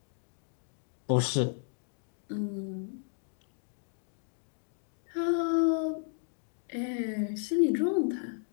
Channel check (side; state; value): right; silent; digital silence